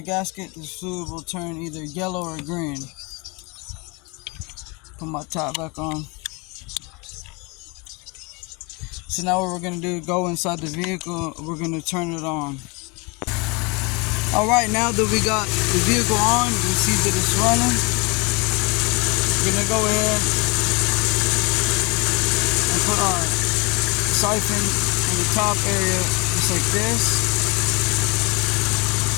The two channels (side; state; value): right; quieter; 28.7 dB